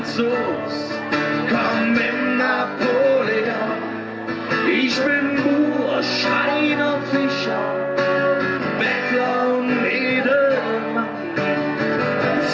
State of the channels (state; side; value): identical; both; correlation 1.00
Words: komm mit Napoleon. Ich bin Bauer, Schreiner, Fischer, Bettler und Edelmann,